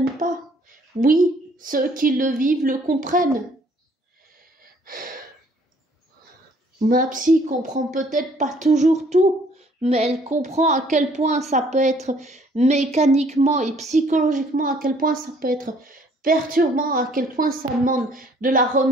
pas. Oui, ceux qui le vivent le comprennent. Ma psy comprend peut-être pas toujours tout, mais elle comprend à quel point ça peut être mécaniquement et psychologiquement, à quel point ça peut être perturbant, à quel point ça demande de la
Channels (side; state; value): both; normal; correlation 0.61